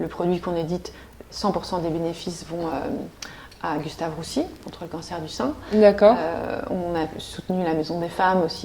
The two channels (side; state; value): both; identical; correlation 1.00